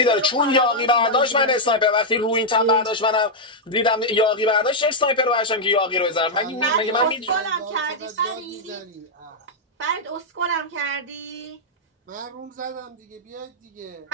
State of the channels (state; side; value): normal; both; correlation -0.04